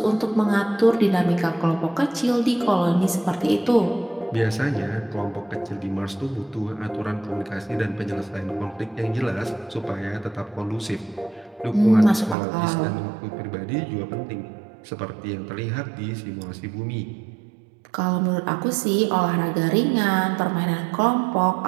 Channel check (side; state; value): left; drops out; at 12.4 s